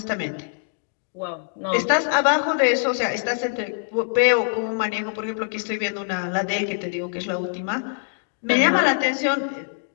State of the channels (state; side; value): silent; right; digital silence